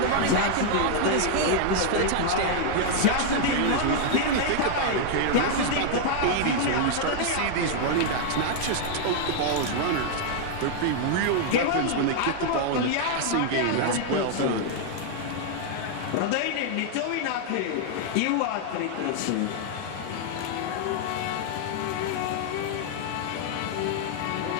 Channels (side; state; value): both; different; correlation 0.00